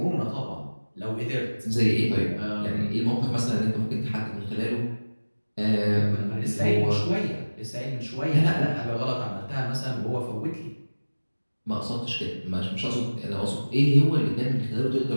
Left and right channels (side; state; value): both; inverted; correlation -1.00